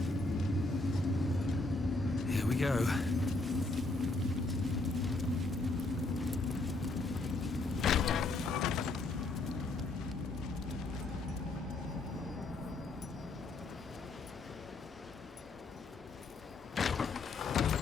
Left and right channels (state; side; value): quieter; right; 3.2 dB